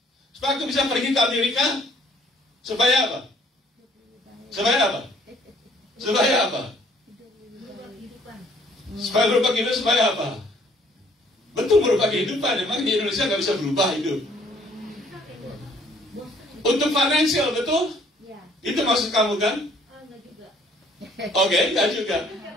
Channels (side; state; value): both; normal; correlation 0.61